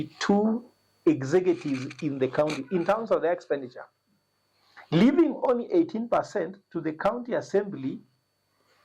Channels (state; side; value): identical; both; correlation 1.00